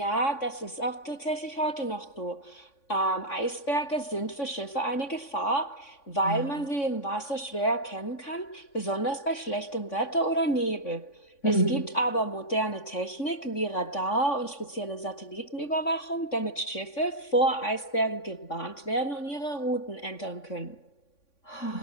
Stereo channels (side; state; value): right; late; 3.6 ms